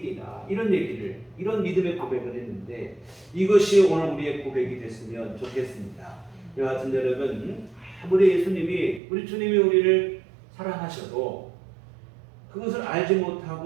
이런 얘기를, 이런 믿음의 고백을 했는데, 이것이 오늘 우리의 고백이 됐으면 좋겠습니다. 여하튼 여러분, 아무리 예수님이, 우리 주님이 우리를 사랑하셔도 그것을 알지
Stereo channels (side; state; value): left; drops out; at 9.0 s